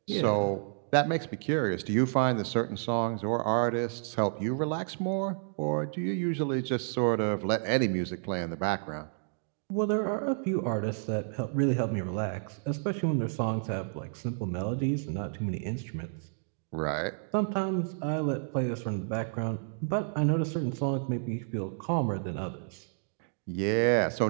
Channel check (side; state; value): left; silent; digital silence